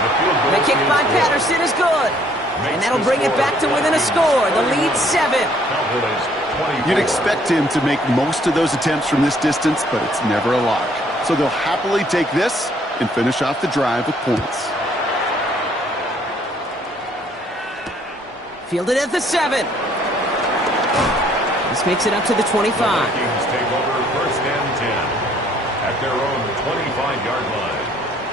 The kick by Patterson is good. And that'll bring it back to within a score. The lead 7. You'd expect him to make most of those attempts from this distance, but it's never a lock. So they'll happily take this and finish off the drive with points. Fielded at the 7. This makes it up to the 25. Vikings take over 1st and 10 at their own 25-yard line.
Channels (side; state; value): both; normal; correlation 0.62